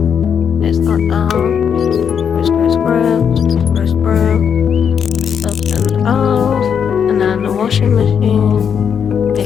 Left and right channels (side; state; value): right; quieter; 7.5 dB